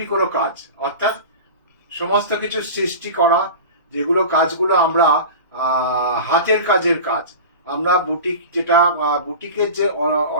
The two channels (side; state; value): both; inverted; correlation -0.32